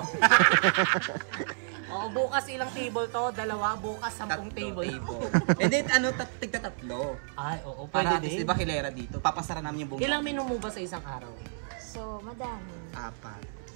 Oo, bukas ilang table to? Dalawa, bukas 10 table. And then, tigta-tatlo. Ay, oo, Para pwede at least, din. di ba kilera dito? Papasara namin yung buong Ilang menu mo ba sa isang araw? So, madami. 4.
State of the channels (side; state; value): left; silent; 58 dB below the other